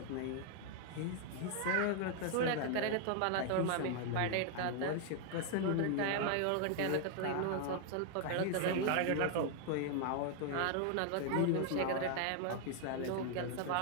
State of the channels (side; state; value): both; different; correlation 0.00